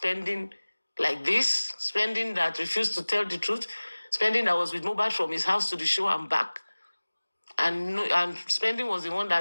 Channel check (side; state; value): both; inverted; correlation -1.00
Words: like this, spending that refused to tell the truth, spending that was with Mohbad from his house to the show and back, and spending was the one